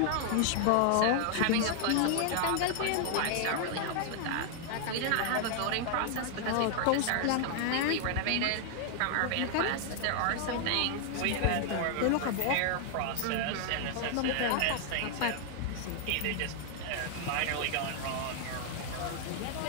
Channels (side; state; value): both; different; correlation 0.00